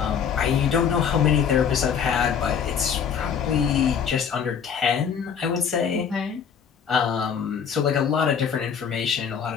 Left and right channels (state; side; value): quieter; right; 7.3 dB